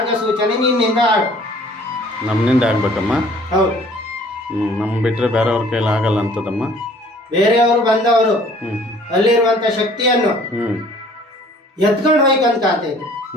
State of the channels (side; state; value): both; normal; correlation 0.54